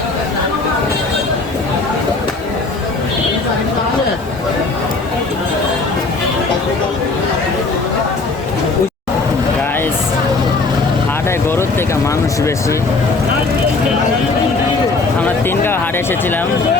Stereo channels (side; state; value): right; quieter; 3.7 dB